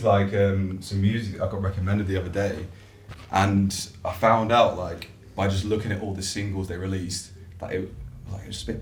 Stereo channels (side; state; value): both; identical; correlation 1.00